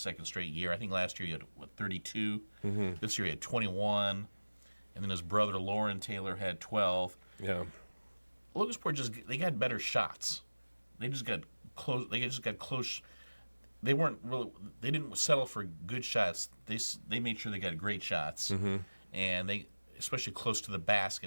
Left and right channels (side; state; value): both; inverted; correlation -1.00